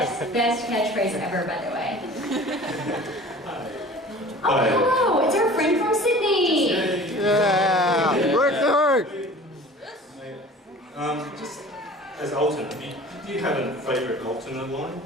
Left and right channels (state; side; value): normal; both; correlation 0.44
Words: catchphrase ever, by the way. Oh, hello! It's our friend from Sydney. Yeah! Work! Just as alternate, do you have a favourite alternate line